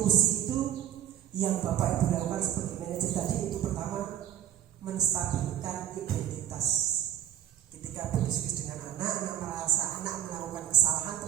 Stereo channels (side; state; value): left; quieter; 10.9 dB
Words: itu yang Bapak Ibu lakukan seperti manajer tadi, itu pertama menstabilkan identitas. Ketika berdiskusi dengan anak merasa anak melakukan kesalahan,